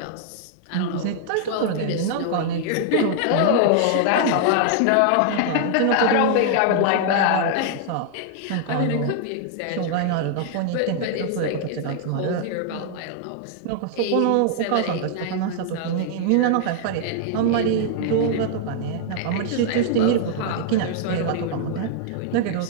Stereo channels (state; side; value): different; both; correlation -0.01